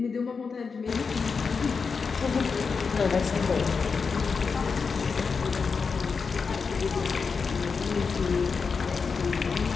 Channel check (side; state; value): right; quieter; 5.2 dB